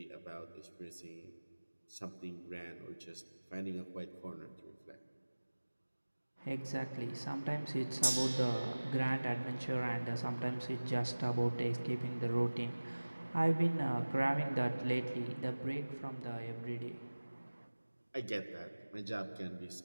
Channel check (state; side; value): inverted; both; correlation -1.00